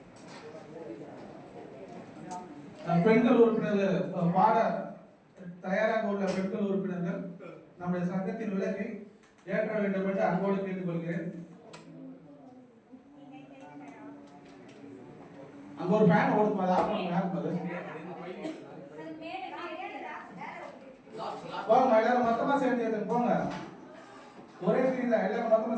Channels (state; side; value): identical; both; correlation 1.00